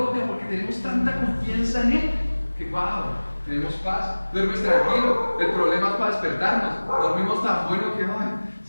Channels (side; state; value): both; inverted; correlation -1.00